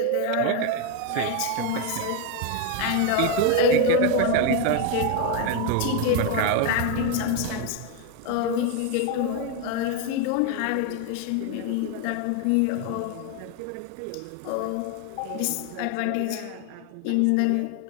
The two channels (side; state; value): both; different; correlation 0.02